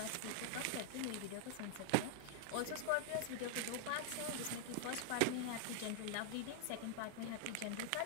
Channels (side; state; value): both; different; correlation 0.00